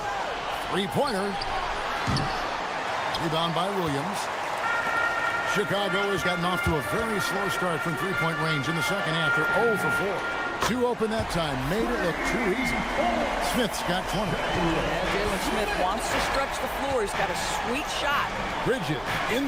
3-pointer. Rebound by Williams. Chicago has gotten off to a very slow start from 3-point range in the second half. They're 0 for 4. 2 open that time. Made it look too easy. Smith's got 20. Yeah, Jalen Smith wants to stretch the floor. He's got a sweet shot. Bridges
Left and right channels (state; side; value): identical; both; correlation 1.00